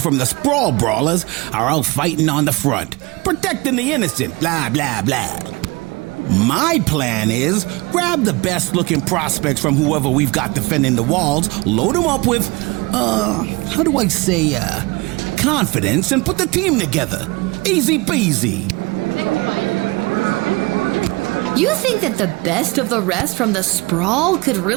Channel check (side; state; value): left; quieter; 24.9 dB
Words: from the Sprawl Brawlers are out fighting on the front, protecting the innocent, blah, blah, blah. My plan is grab the best looking prospects from whoever we've got defending the walls, load them up with, how do I say, confidence, and put the team together. Easy peasy. You think that the best of the rest from the Sprawl could